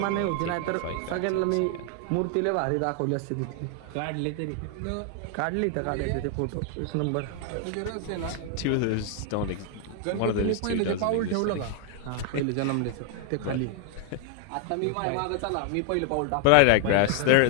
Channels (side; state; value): both; different; correlation 0.00